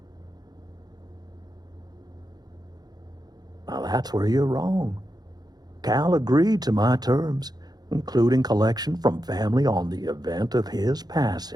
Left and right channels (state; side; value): late; left; 0.19 ms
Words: Now that's where you're wrong. Cal agreed to my terms, including collection from family on the event of his